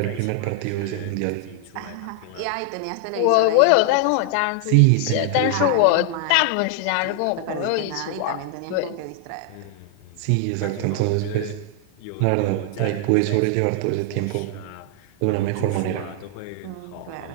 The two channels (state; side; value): different; both; correlation 0.00